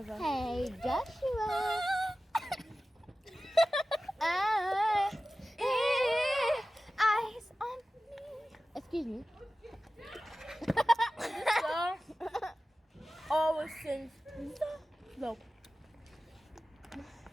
her. Hey, Joshua. Eyes on me. Excuse me. So, always sings. No.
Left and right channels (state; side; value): normal; both; correlation 0.95